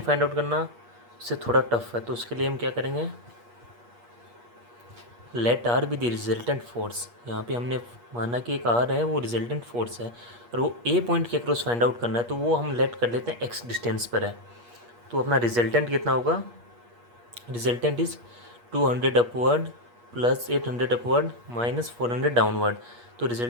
आउट करना उससे थोड़ा टफ है। तो उसके लिए हम क्या करेंगे, let R be the resultant force. यहाँ पे हमने माना कि एक आर है वो रिजल्टेंट फोर्स है और वो ए पॉइंट के अक्रॉस फाइंड आउट करना है, तो वो हम लेट कर लेते हैं एक्स डिस्टेंस पर है। तो अपना रिजल्टेंट कितना होगा, resultant is 200 upward plus 800 upward minus 400 downward. तो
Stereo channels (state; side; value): late; left; 8.4 ms